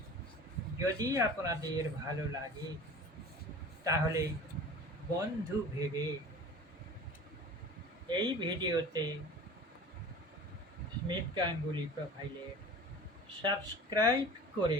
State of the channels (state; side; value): normal; both; correlation 0.40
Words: যদি আপনাদের ভালো লাগে তাহলে বন্ধু ভেবে এই ভিডিওতে স্মিথ গাঙ্গুলি প্রোফাইলে সাবস্ক্রাইব